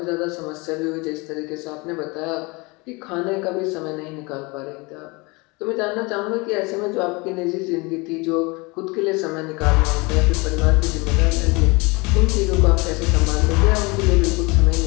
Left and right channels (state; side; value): quieter; right; 26.5 dB